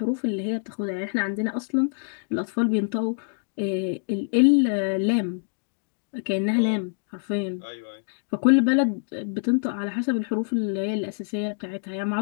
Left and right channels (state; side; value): silent; right; digital silence